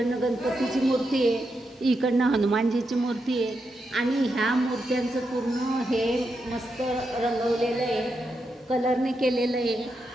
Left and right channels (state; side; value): normal; both; correlation 0.85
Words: गणपतीची मूर्ती आहे, इकडनं हनुमानजीची मूर्ती आहे. आणि ह्या मूर्त्यांचं पूर्ण हे मस्त रंगवलेलं आहे, कलरने केलेलं आहे.